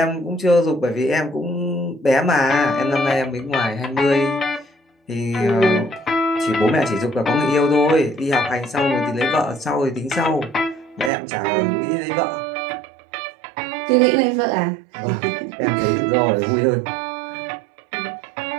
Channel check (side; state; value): left; drops out; at 11.1 s